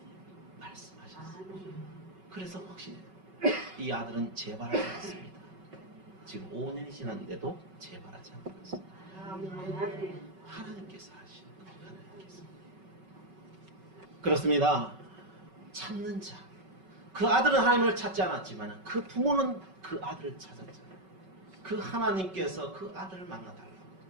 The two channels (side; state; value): left; late; 5.3 ms